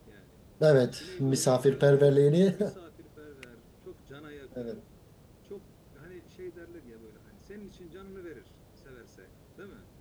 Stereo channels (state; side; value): identical; both; correlation 1.00